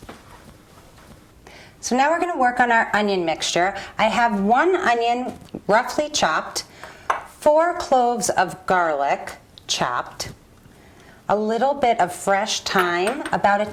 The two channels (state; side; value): identical; both; correlation 1.00